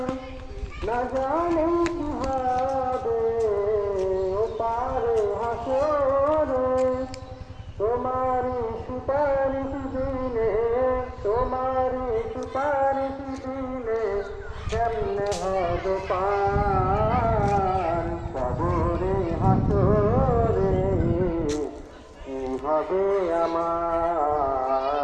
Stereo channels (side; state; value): both; identical; correlation 1.00